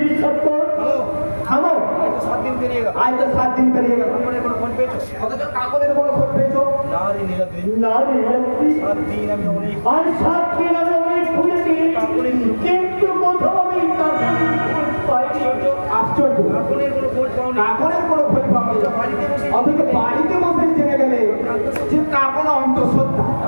বিশ্বাস কর। হ্যালো থামো, এই তো 7 দিন পেরিয়ে গেল আজ তো 7 দিন পেরিয়ে গেল, তারপরে কোনো ফোন পেয়েছো অথচ কাগজের কোনো খোঁজ পেয়েছো? না রে নীলাদ্রি নারী নারী 7 দিন আমি অনেক আর 7 দিন আমি অনেক খুঁজেছি, কিন্তু কোথাও আমি কাগজের খোঁজ পাইনি। আশ্চর্য, কাকুনের কোনো খোঁজ পাওনি কাগজের কোনো খোঁজ পাওনি। বাড়িতে বসে অথচ বাড়িতে বসে জেনে গেলে যে কাগজ অন্তঃসত্ত্বা,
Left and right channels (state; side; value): inverted; both; correlation -1.00